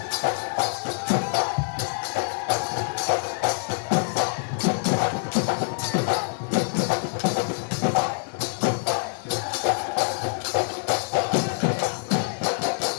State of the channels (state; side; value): silent; right; digital silence